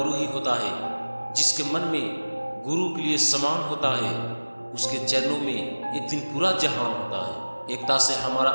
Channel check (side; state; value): both; inverted; correlation -1.00